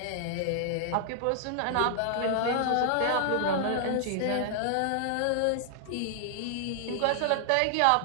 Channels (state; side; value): different; both; correlation -0.01